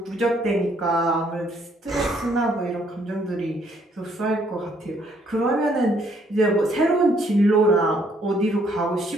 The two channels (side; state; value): both; normal; correlation 0.67